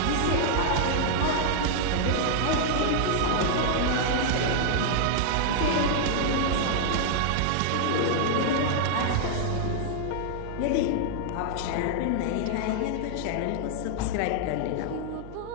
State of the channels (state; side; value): different; both; correlation -0.01